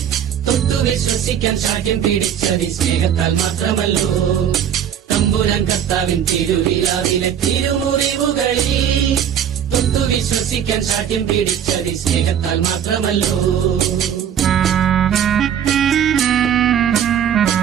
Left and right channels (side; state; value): left; quieter; 9.0 dB